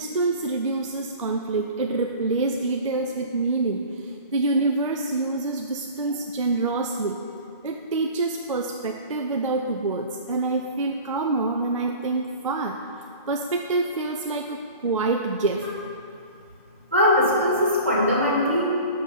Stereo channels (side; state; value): both; inverted; correlation -0.40